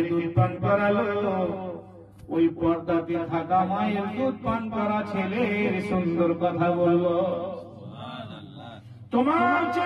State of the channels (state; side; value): identical; both; correlation 1.00